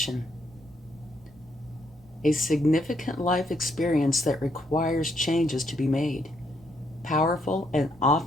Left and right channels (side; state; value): left; noise; rumble, 29 dB below the sound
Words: A significant life experience that requires changes to be made. Powerful and